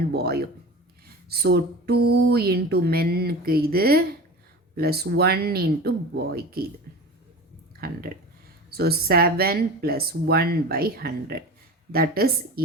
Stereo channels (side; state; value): both; normal; correlation 0.34